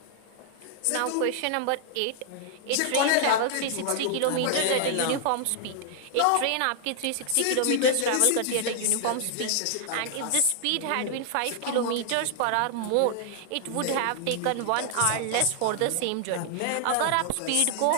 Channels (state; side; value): different; both; correlation 0.00